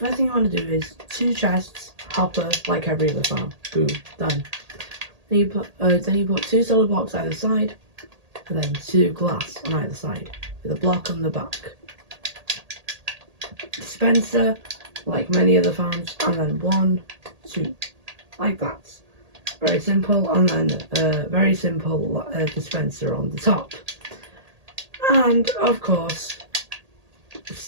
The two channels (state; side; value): late; left; 1.8 ms